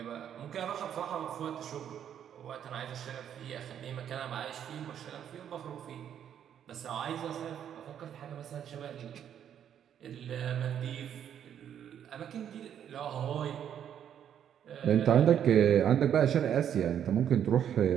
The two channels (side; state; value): left; quieter; 9.4 dB